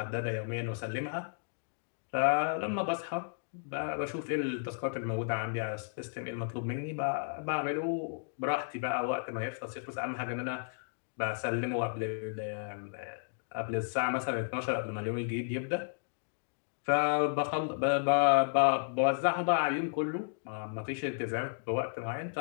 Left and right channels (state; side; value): silent; right; digital silence